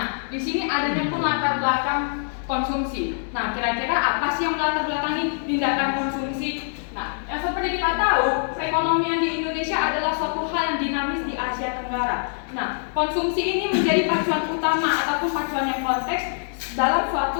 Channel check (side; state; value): right; silent; 61 dB below the other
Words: di sini adanya pun latar belakang konsumsi. Nah, kira-kira apa sih yang melatar belakangi tindakan konsumsi? Nah, yang seperti kita tahu, perekonomian di Indonesia adalah suatu hal yang dinamis di Asia Tenggara. Nah, konsumsi ini menjadi pacuan utama ataupun pacuan yang konteks dalam